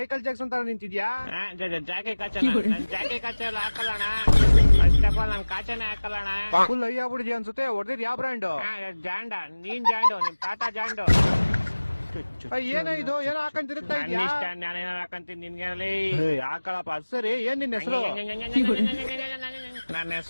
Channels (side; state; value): both; inverted; correlation -1.00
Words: ಜಾಕ್ಸನ್ ತರ ನಿಂತಿದ್ಯಾ? ಜಾಕೆ ಕಾಚ ನನ್ ಜಾಕೆ ಕಾಚ ಎಲ್ಲ ಹಾಕಲ್ಲಣ. ಫಸ್ಟ್ ಆಫ್ ಆಲ್ ನನ್ ಕಾಚನೆ ಹಾಕಲ್ಲಣ. ಫುಲ್ ಅಯ್ಯ ಆಗ್ಬಿಡಿದ್ಯಾ ಅನ್ಸುತ್ತೆ. ಹೊಡೆದಿದ್ ಯಾವ ಬ್ರ್ಯಾಂಡ್? ಜಾಂಡ. ನೀನ್ ಜಾಂಡು, ನಿಮ್ ತಾತ ಜಾಂಡು. ಏನೋ ಇದು, ಏನೋ ಹಾಕೊಂಡ್ ತಿರುಗ್ತಾ ನನ್ ಇದ್ಯಾ? ಇಷ್ಟ, ನಾನೇನಾರ ಹಾಕಂತೀನಿ ನಿನ್ಗೆ. ಹಾಕಳಪ್ಪ. ಸರಿ, ಏನ್ ನಿನ್ ಹೆಸರು? ನನ್ನ